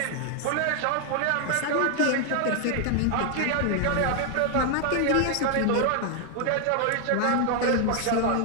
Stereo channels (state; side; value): different; both; correlation 0.00